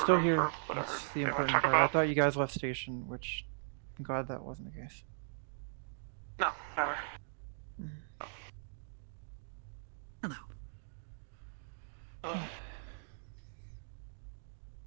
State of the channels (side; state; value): left; silent; digital silence